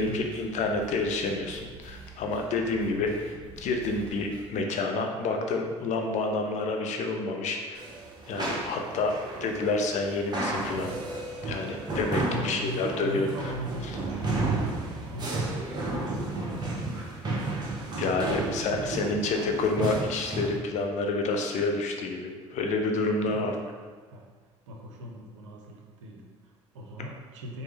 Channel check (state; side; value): normal; both; correlation 0.36